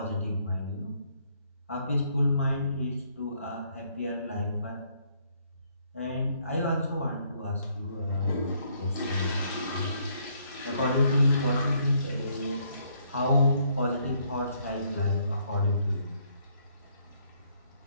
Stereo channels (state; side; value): inverted; both; correlation -0.69